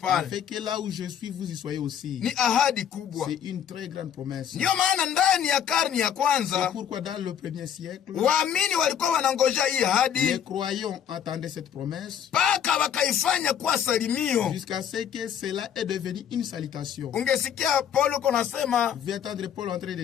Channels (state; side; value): quieter; right; 9.0 dB